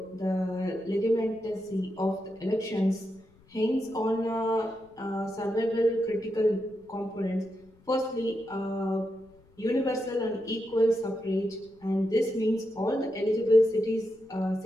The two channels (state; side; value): noise; left; rumble, 29 dB below the sound